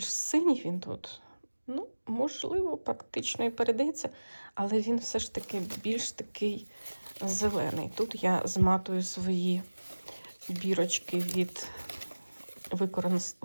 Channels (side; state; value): both; inverted; correlation -1.00